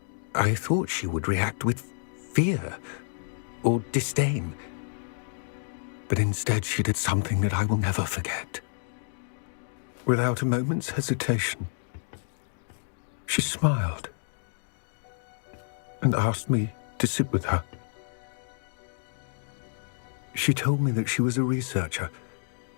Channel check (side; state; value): right; silent; digital silence